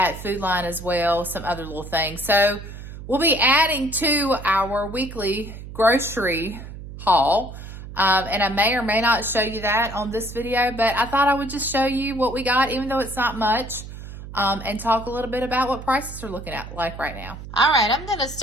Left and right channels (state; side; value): noise; right; hum, 12 dB below the sound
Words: Food Line as well, some other little things. So we'll be adding to our weekly grocery haul. And I may or may not show you that on this video, but I thought I would just show you what we got, even though it's not much. And talk a little bit about what prices are looking at like right now. All right, I'm gonna